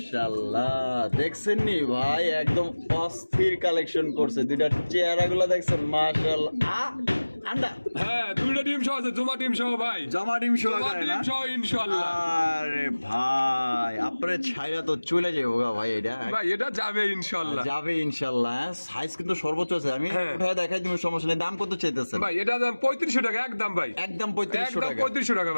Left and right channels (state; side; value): inverted; both; correlation -1.00